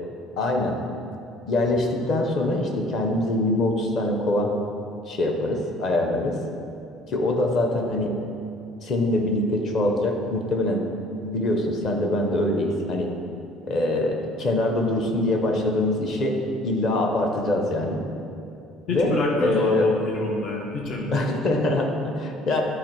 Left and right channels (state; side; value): normal; both; correlation 0.54